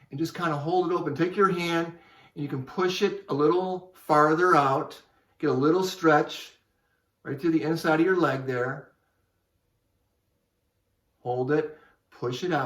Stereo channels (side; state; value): both; identical; correlation 1.00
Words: and just kind of hold it open. Take your hand and you can push it a little farther out. Get a little stretch right through the inside of your leg there. Hold it, push it